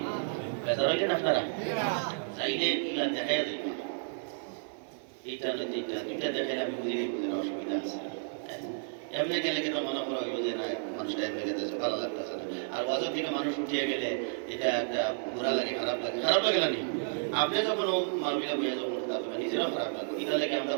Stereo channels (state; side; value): silent; left; digital silence